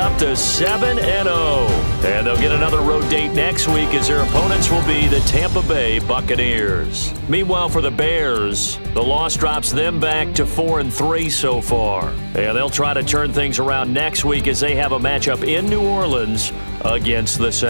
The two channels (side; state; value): both; inverted; correlation -1.00